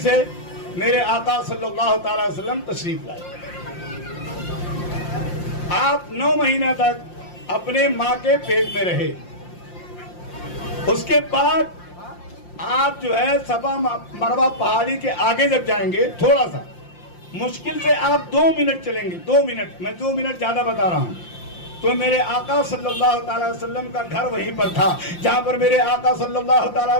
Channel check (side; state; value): right; late; 5.7 ms